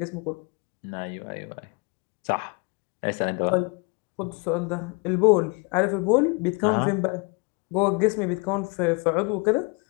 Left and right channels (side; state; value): right; quieter; 31.9 dB